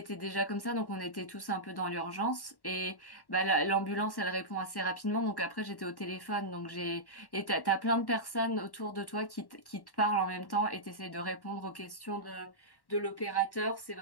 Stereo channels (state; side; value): late; right; 1.1 ms